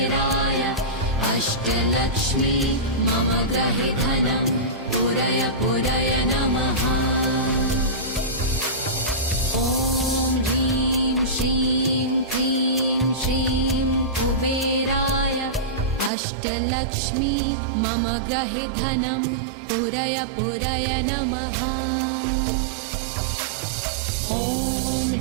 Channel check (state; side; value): drops out; left; at 16.1 s